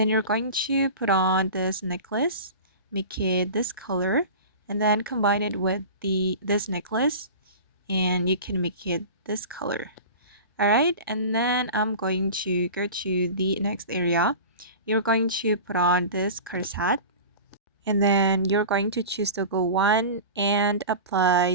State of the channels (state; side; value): inverted; both; correlation -0.35